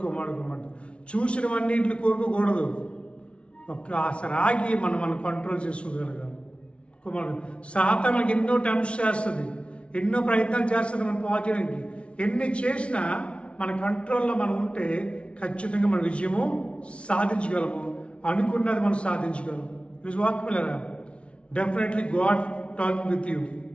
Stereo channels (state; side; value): late; right; 0.060 ms